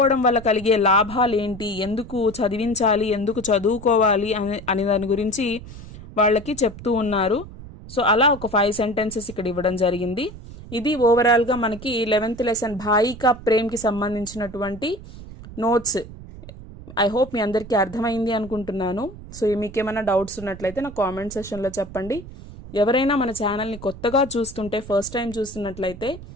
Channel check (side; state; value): right; noise; rumble, 15 dB below the sound